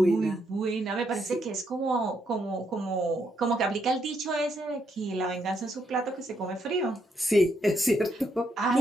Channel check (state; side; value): normal; both; correlation 0.77